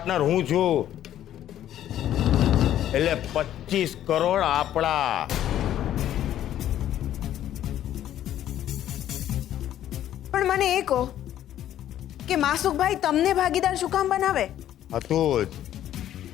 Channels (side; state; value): right; quieter; 11.7 dB